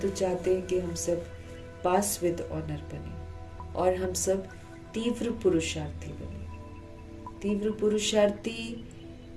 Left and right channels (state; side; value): identical; both; correlation 1.00